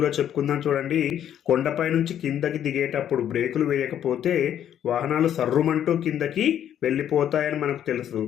చెప్పుకుందాం. చూడండి, కొండపై నుంచి కిందకి దిగేటప్పుడు బ్రేకులు వేయకపోతే వాహనాలు సర్రుమంటూ కిందకి వెళ్ళిపోతాయని మనకు తెలుసు.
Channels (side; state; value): right; quieter; 10.2 dB